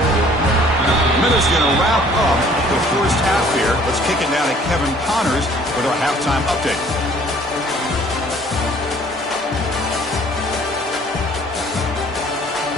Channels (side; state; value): both; normal; correlation 0.55